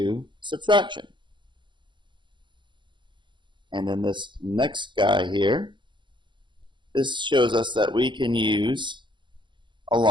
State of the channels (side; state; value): left; late; 0.23 ms